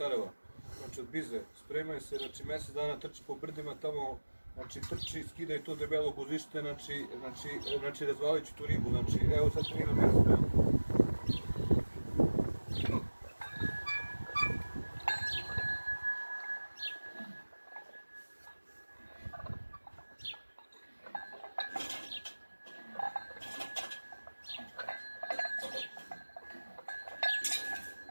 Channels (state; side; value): inverted; both; correlation -1.00